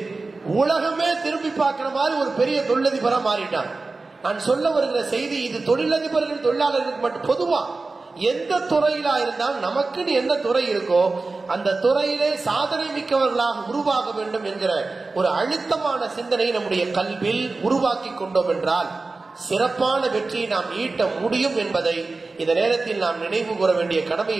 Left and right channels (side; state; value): left; quieter; 3.7 dB